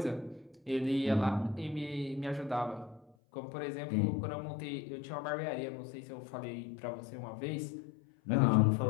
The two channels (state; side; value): drops out; right; at 3.2 s